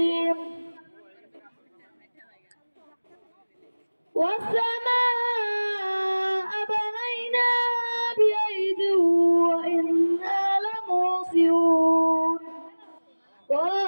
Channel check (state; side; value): inverted; both; correlation -1.00